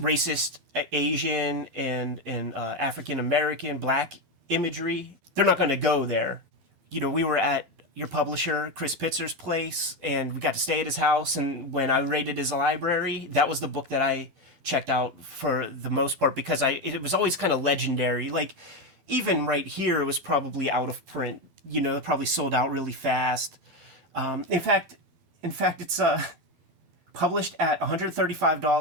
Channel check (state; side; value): late; left; 12 ms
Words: racist Asian and African American Black imagery. They're not going to go there. You know, we were at your publisher Chris Pitzer's place, and we got to stay at his house. And when I raided his library, that was the book that I checked out for the most part, because it was always kind of legendary. Like even right here, it was probably out of print. You know, it probably sold out really fast. In fact, it's published at